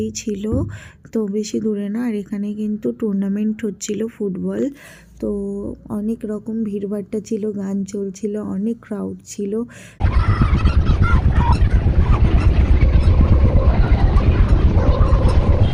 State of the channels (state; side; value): identical; both; correlation 1.00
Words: ছিল, তো বেশি দূরে না। আর এখানে কিন্তু টুর্নামেন্ট হচ্ছিল ফুটবল। তো অনেক রকম ভিড়ভাট্টা ছিল, গান চলছিল, অনেক ক্রাউড ছিল।